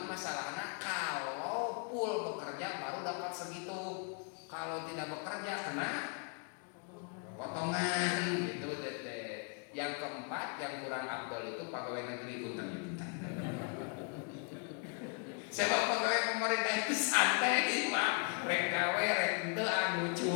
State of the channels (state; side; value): quieter; right; 38.7 dB